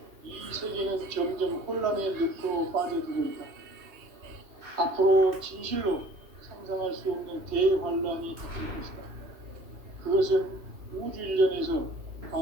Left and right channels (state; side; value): late; left; 2.7 ms